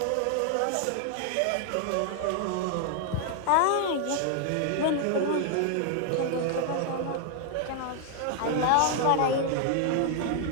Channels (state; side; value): different; both; correlation 0.00